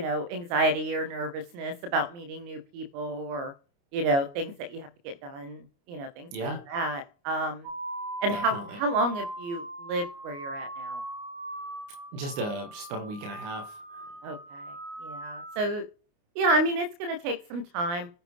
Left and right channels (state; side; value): late; left; 29 ms